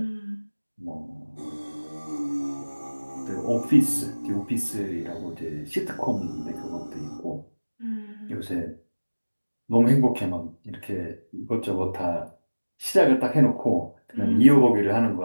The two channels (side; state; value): both; inverted; correlation -1.00